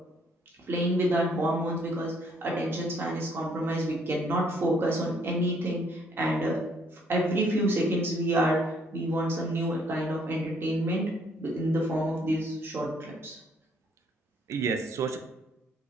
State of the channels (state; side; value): normal; both; correlation 0.66